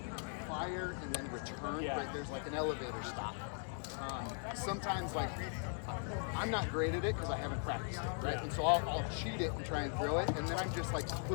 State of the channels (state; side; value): silent; right; 51 dB below the other